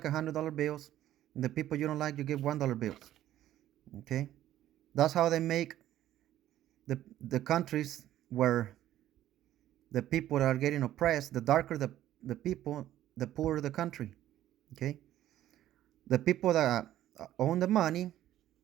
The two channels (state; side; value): quieter; left; 13.0 dB